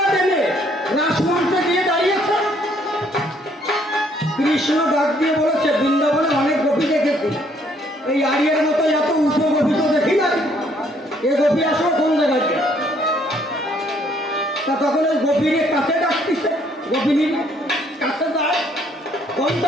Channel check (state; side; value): normal; both; correlation 0.65